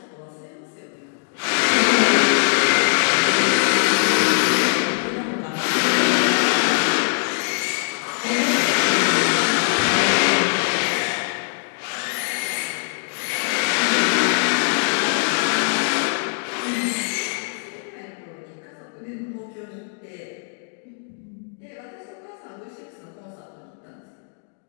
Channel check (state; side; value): silent; right; 62 dB below the other